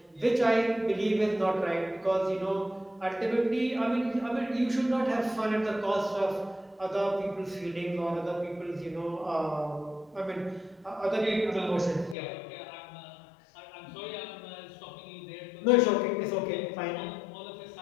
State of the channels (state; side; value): drops out; right; at 12.2 s